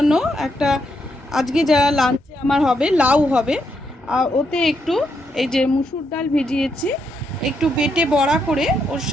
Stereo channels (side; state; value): both; normal; correlation 0.79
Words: একটা আজকে যা লাঞ্চে আমার হবে লাউ হবে। আর ওতে একটু এই যে মুসুর ডাল ভিজিয়েছি, একটু বেটে বড়া করে ওর